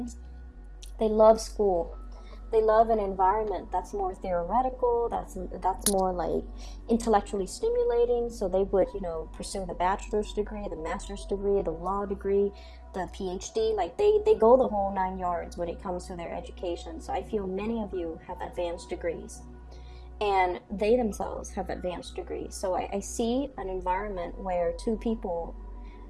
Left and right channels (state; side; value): identical; both; correlation 1.00